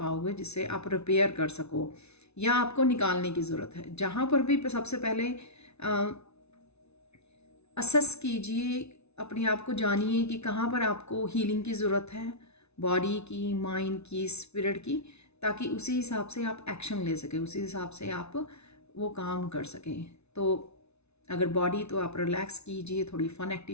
जिससे आप रिपेयर कर सको या आपको निकालने की ज़रूरत है। जहाँ पर भी सबसे पहले असेस कीजिए, अपने आप को जानिए कि कहाँ पर आपको हीलिंग की ज़रूरत है, बॉडी की, माइंड की, स्पिरिट की, ताकि उसी हिसाब से आप एक्शन ले सकें, उसी हिसाब से आप वो काम कर सकें। तो अगर बॉडी तो आप रिलैक्स कीजिए, थोड़ी फन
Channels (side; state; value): right; late; 0.81 ms